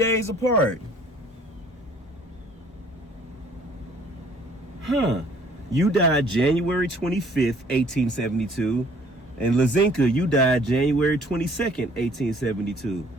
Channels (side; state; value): both; normal; correlation 0.57